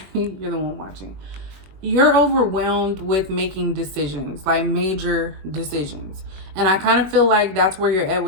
you're the one watching. You're overwhelmed with making decisions, like major decisions. And I kind of feel like that's where you're at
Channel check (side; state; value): left; late; 21 ms